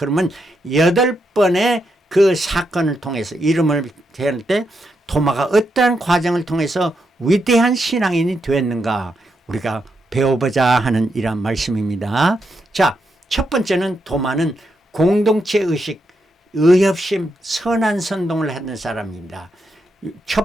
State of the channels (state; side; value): normal; both; correlation 0.82